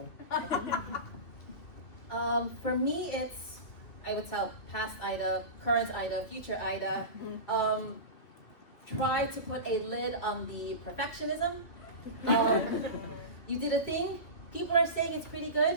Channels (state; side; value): late; right; 2.8 ms